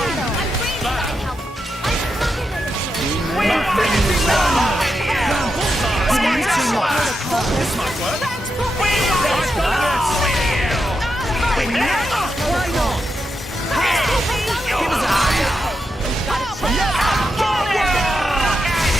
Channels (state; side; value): normal; both; correlation 0.86